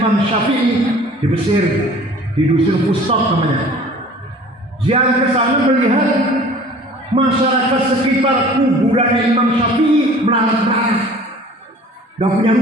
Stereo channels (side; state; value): both; normal; correlation 0.47